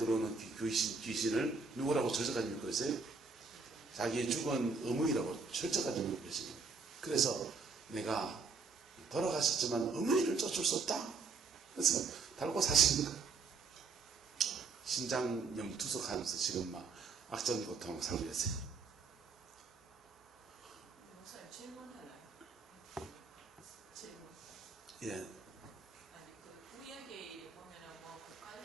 귀신을 누구라고 저주까지 믿고 있어요? 자기의 죽은 어머니라고 철저까지 물고 계십니다. 그래서 내가 돌아가셨지만 어머니를 쫓을 수 없다. 그래서 달고 사시는 거예요. 신장염 투석하면서 지금 막 악전고통을 살고 계세요. 목사님 질문 하나요? 질문. 예. 아니 그 구약에 보면은 뭐 국갈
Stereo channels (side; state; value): left; quieter; 4.6 dB